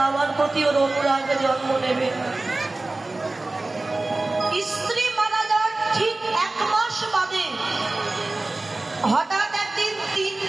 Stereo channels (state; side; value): quieter; left; 3.1 dB